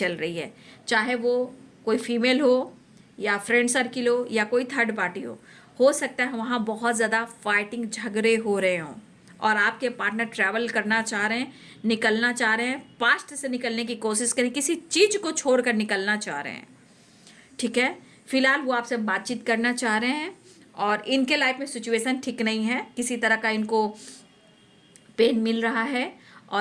रही है, चाहे वो कोई फीमेल हो या फ्रेंड सर्किल हो या कोई थर्ड पार्टी हो सकता है वहाँ बहुत ज़्यादा फाइटिंग, झगड़े हो रहे हों, और आपके पार्टनर ट्रैवल करना चाह रहे हैं, निकलना चाह रहे हैं, पास्ट से निकलने की कोशिश करें, किसी चीज़ को छोड़कर निकलना चाह रहे हैं, ठीक है। फिलहाल वो आपसे बातचीत करना चाह रहे हैं और इनके लाइफ में सिचुएशन ठीक नहीं है, किसी तरह का इनको पेन मिल रहा है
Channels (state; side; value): identical; both; correlation 1.00